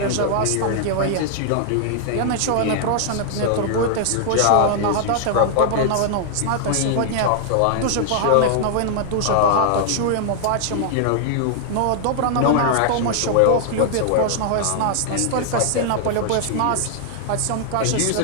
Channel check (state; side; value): different; both; correlation -0.01